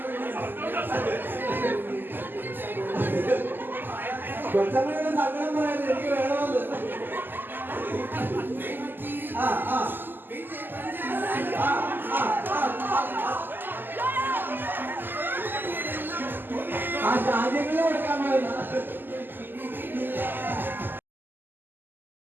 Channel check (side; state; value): left; late; 0.092 ms